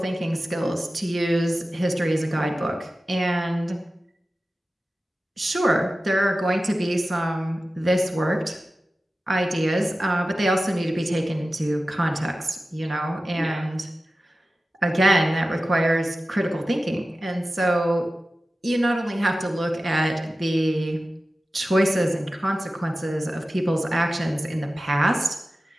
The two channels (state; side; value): normal; both; correlation 0.95